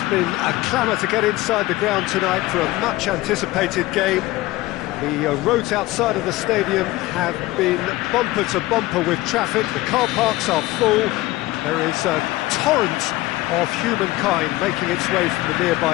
been a clamour to get inside the ground tonight for a much-anticipated game. The roads outside of the stadium have been bumper to bumper with traffic. The car parks are full. There is a torrent of humankind making its way from the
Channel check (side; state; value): right; quieter; 18.4 dB